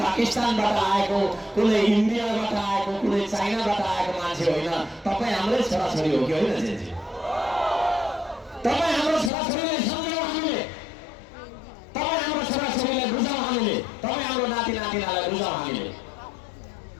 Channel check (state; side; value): drops out; right; at 9.3 s